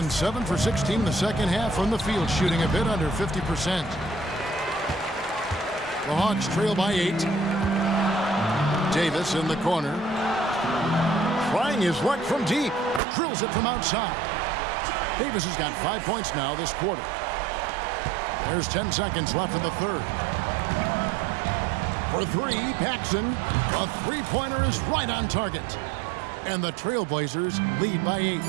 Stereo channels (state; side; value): drops out; left; at 13.0 s